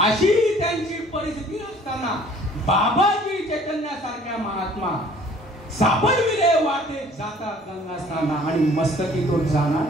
त्यांची परिस्थिती असताना बाबाजी चैतन्यासारख्या महात्मा सापडविले वाटे जाता गंगास्थाना, आणि मस्तकी तो जाणार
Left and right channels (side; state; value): both; normal; correlation 0.54